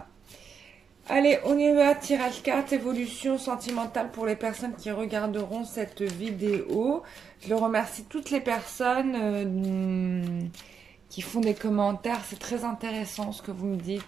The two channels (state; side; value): quieter; left; 6.6 dB